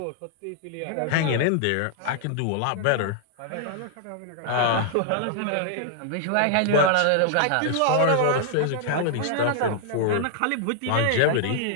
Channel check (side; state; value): both; different; correlation -0.01